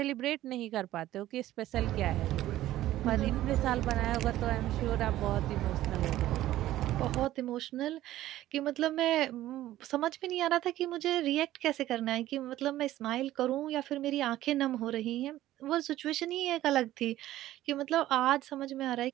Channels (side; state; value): left; quieter; 14.4 dB